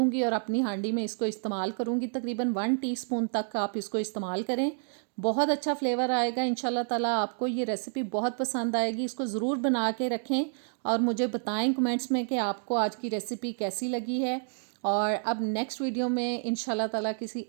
और अपनी हांडी में इसको इस्तेमाल करूंगी। तकरीबन 1 टीस्पून तक आप इसको इस्तेमाल करें, बहुत अच्छा फ्लेवर आएगा इंशाल्लाह ताला। आपको ये रेसिपी बहुत पसंद आएगी। इसको ज़रूर बना के रखें और मुझे बताएं कमेंट्स में कि आपको आज की रेसिपी कैसी लगी है। और अब नेक्स्ट वीडियो में इंशाल्लाह ताला किसी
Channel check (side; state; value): left; silent; 58 dB below the other